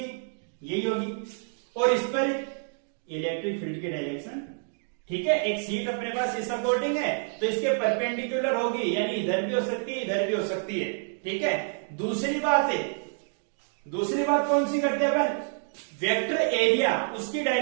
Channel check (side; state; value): left; silent; 58 dB below the other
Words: यही होगी, और इस पर इलेक्ट्रिक फील्ड की डायरेक्शन। ठीक है, एक शीट अपने पास इस अकॉर्डिंग है तो इसके परपेंडिकुलर होगी, यानी इधर भी हो सकती है, इधर भी हो सकती है। ठीक है, दूसरी बात कौन सी करते हैं अपन, वेक्टर एरिया, उसकी